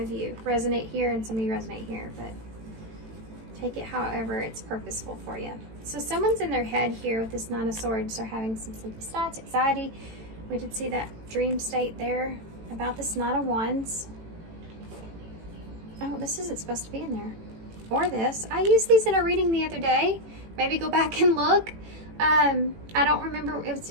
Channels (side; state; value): left; late; 18 ms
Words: you. Resonate here and some of you resonate here, but take it however it's purposeful for you. So someone's in their head here with this 9 of Swords. They're having some sleepless nights, anxiety. We did see that dream state there about this 9 of Wands. Oh, this isn't supposed to be in there. Or this. I used these in a reading the other day. Maybe go back and look. I don't remember.